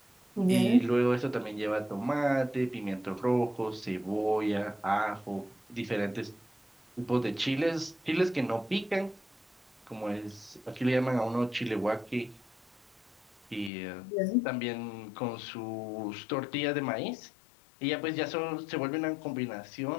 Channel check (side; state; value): right; drops out; at 13.7 s